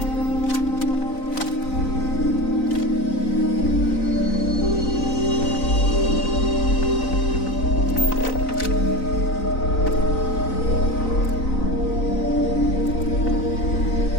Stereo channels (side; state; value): right; late; 4.0 ms